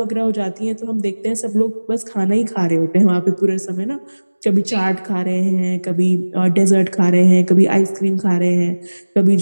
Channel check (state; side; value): inverted; both; correlation -1.00